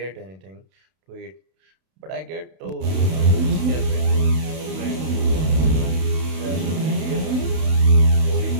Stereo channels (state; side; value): late; left; 32 ms